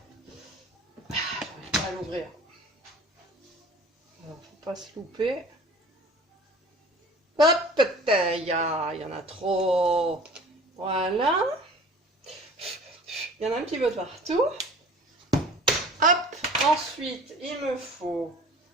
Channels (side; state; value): both; normal; correlation 0.45